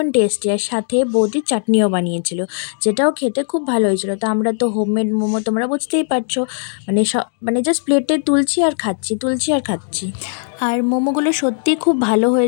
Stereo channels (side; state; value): right; silent; 67 dB below the other